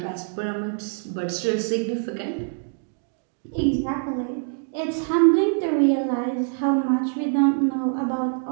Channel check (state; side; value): silent; left; 62 dB below the other